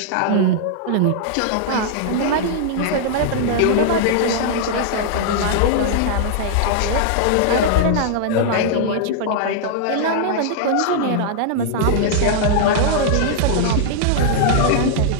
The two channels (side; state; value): both; different; correlation -0.01